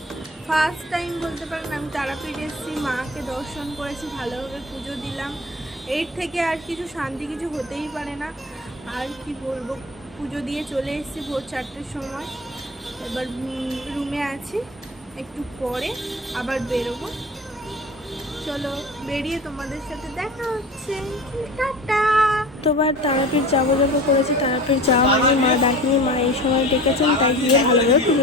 ফার্স্ট টাইম বলতে পারেন আমি তারাপীঠ এসেছি, মাকে দর্শন করেছি, ভালোভাবে পুজো দিলাম। এর থেকে আর কিছু শান্তি কিছু হতেই পারে না। আর কি বলবো, পুজো দিয়ে চলে এসেছি ভোর 4টের সময়। এবার রুমে আছি, একটু পরে আবার বেরোবো। চলো বেরিয়ে তোমাদের সাথে দেখা হচ্ছে, টাটা। তোবার তারাপীঠ যাবো করেছি, তারাপীঠ যাওয়া হয়নি, মা ডাকিনি, মা এই সময় ডেকেছেন, তাই গিয়ে ভালোভাবে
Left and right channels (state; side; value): normal; both; correlation 0.37